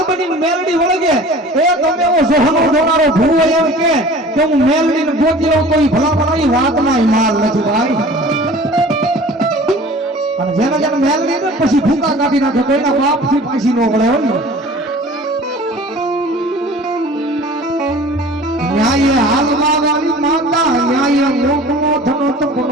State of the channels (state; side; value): normal; both; correlation 0.44